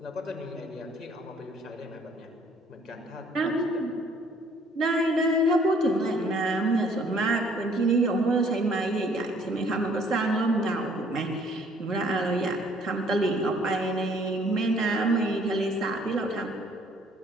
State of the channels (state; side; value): normal; both; correlation 0.60